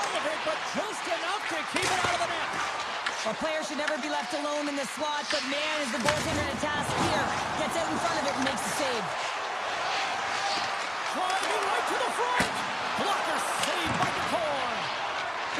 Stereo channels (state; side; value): identical; both; correlation 1.00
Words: of it, but just enough to keep it out of the net. A player should never be left alone in the slot, but man, is the goaltender to task here. Gets out in front of it and makes the save. Driving right to the front. Blocker saved by the core.